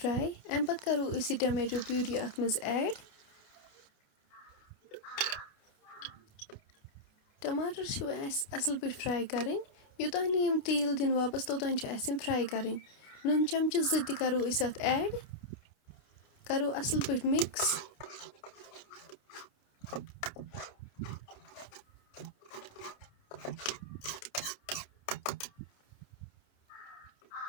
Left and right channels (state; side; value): late; right; 29 ms